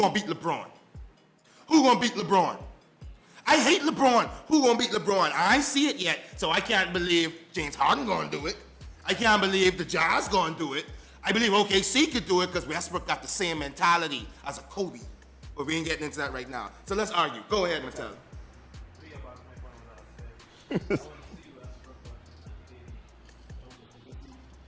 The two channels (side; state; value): both; identical; correlation 1.00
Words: beat LeBron. Who gonna beat LeBron? I hate LeBron. Who gonna beat LeBron? I ain't see it yet, so I can't believe James Harden gonna do it. I can't believe the Jazz gonna do it. I believe OKC could do it because Westbrook got the same mentality as a Kobe. But we ain't getting into that right now. So let's argue. Go ahead, Mattel. Let me get back to my point what I was saying. I want to see Westbrook and KD, because OKC